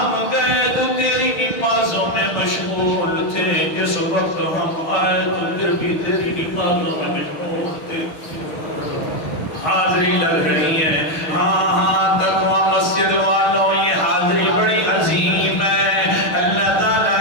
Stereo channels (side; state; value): right; late; 6.2 ms